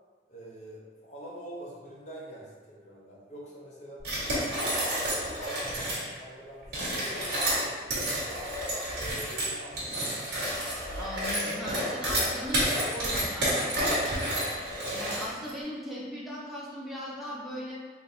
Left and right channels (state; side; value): normal; both; correlation 0.15